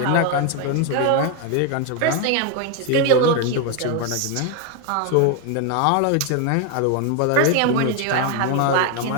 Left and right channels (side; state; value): both; different; correlation 0.01